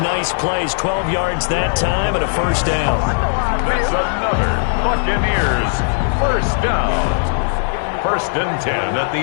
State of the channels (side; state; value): right; silent; digital silence